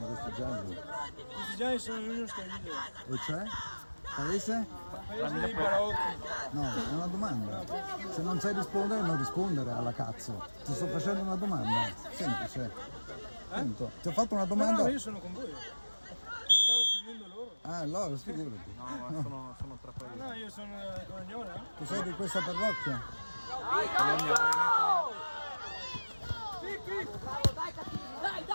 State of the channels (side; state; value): both; inverted; correlation -1.00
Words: questi gialli? Questi gialli sono l'unico scandito. E cioè? Paese? Paese dei barocchi. No, è una domanda. Se non sai rispondere, non rispondere alla cazzo. Ti sto facendo una domanda. Semplice. Punto. Ti ho fatto una domanda. No, io sono con voi. Stavo prendendo loro. Ah, allora, figurati. Sono tra paesi. No, io sono Coragnone. Tu sei di questa parrocchia? Dai, cazzo! Sì, dai, cattivi, dai,